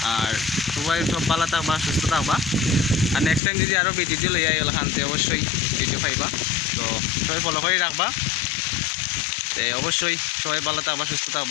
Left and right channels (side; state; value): right; drops out; at 3.4 s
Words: আর সবাই সব ভালো থাকবা, সুস্থ থাকবা, আর নেক্সট টাইম যদি আরও ভিডিও লইয়া এলো খানতে অবশ্যই ভিডিও পাইবা। তো সবাই ফলো করে রাখবা, অবশ্যই সবাই ভালো থাকবা, সুস্থ